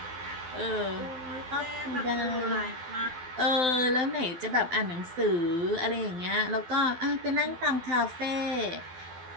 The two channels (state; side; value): late; left; 12 ms